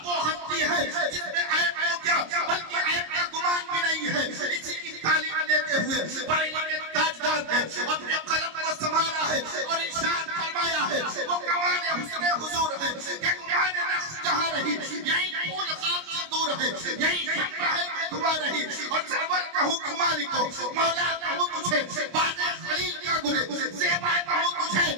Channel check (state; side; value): late; left; 26 ms